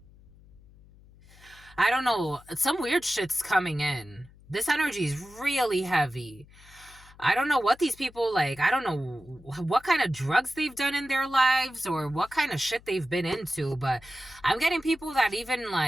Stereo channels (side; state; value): left; noise; hum, 24 dB below the sound